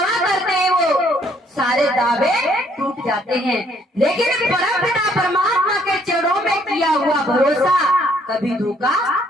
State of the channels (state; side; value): normal; both; correlation 0.66